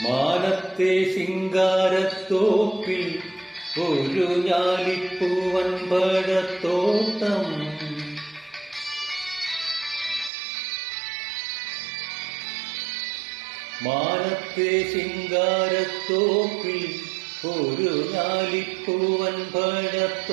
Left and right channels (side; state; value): left; drops out; at 10.3 s